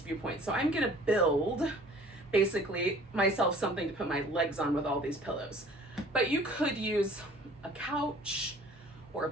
viewpoint. So I'm gonna build basically myself something to put my legs on with all these pillows. But you could use a couch or a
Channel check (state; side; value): normal; both; correlation 0.51